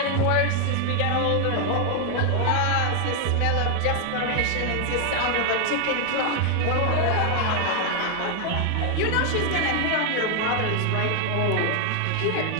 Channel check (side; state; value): both; different; correlation 0.01